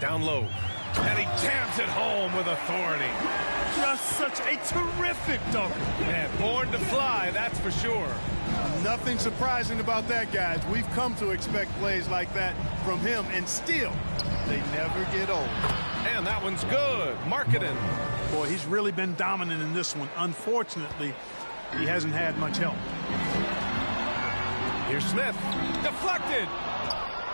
low. And he jams it home with authority. Just such a terrific dunk. Man, born to fly, that's for sure. Nothing surprising about that, guys. We've come to expect plays like that from him, and still, they never get old. And that one's good. Markkanen. Boy, he's really been dominant in this one. Unfortunately, he hasn't had much help. Here's Smith. Deflected.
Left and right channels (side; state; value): both; inverted; correlation -1.00